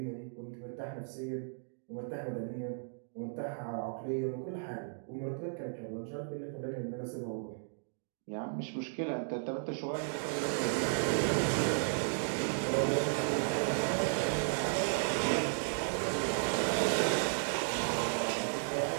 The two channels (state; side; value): silent; left; digital silence